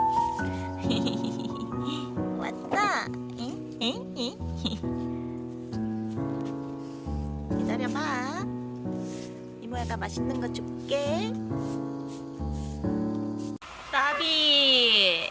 왔다. 응? 응? 응? 기다려봐. 이모야가 맛있는 거 줄게. 나비,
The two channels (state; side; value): identical; both; correlation 1.00